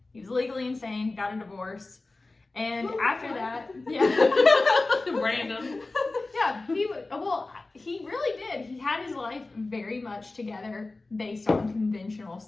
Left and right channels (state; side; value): quieter; right; 3.3 dB